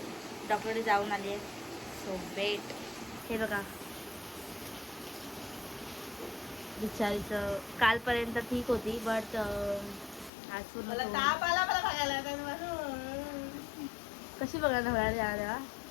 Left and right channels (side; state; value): right; drops out; at 10.3 s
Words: डॉक्टरकडे जाऊन आली आहे. So wait. हे बघा बिचारीचं कालपर्यंत ठीक होती बट आज पूर्ण कशी बघायला होणार तेव्हा.